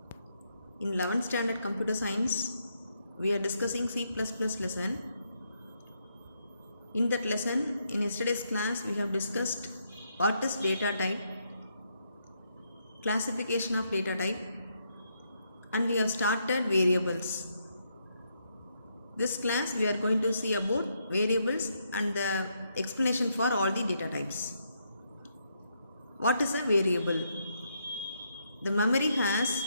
In 11th standard computer science we are discussing C++ lesson. In that lesson, in yesterday's class we have discussed what is data type, classification of data type, and we have started variables. This class we are going to see about variables and the explanation for all the data types. What is a variable? The memory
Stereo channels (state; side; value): inverted; both; correlation -0.78